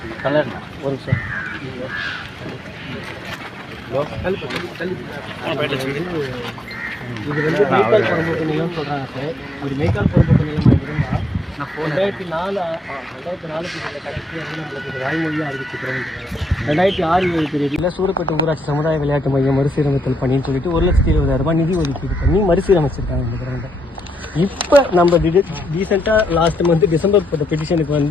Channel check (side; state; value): both; normal; correlation 0.79